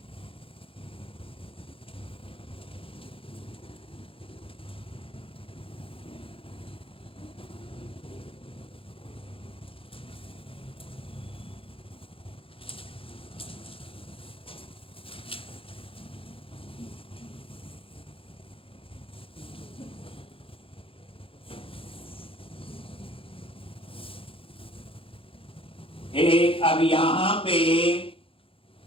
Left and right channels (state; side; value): late; right; 0.27 ms